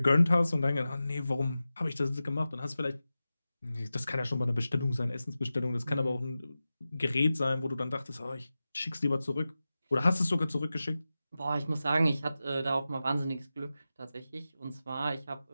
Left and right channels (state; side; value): inverted; both; correlation -0.94